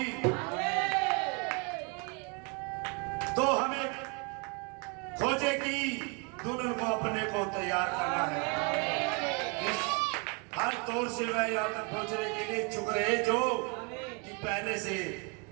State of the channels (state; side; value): quieter; left; 31.2 dB